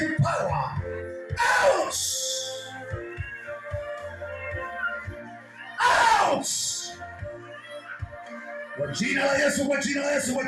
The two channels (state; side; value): identical; both; correlation 1.00